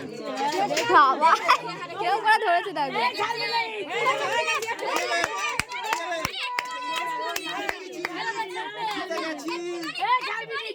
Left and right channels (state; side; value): identical; both; correlation 1.00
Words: বাবা কেউ করে ধরেছে তাকে।